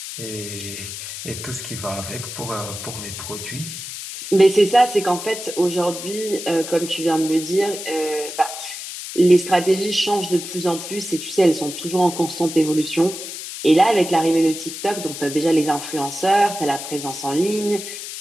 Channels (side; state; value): left; noise; hiss, 9 dB below the sound